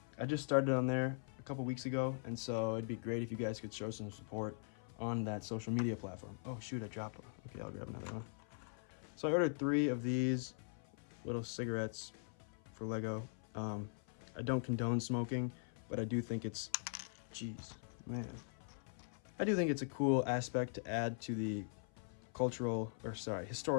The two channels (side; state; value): right; silent; 50 dB below the other